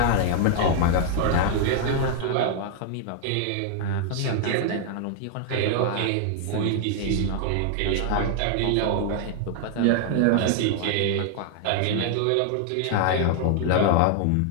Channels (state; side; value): different; both; correlation 0.00